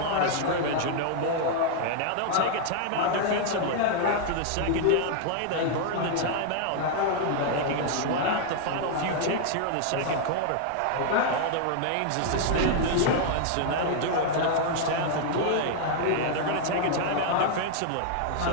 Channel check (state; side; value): different; both; correlation -0.01